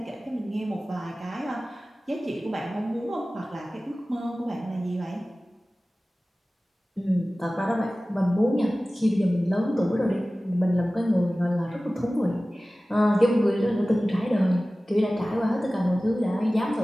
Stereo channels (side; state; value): both; normal; correlation 0.97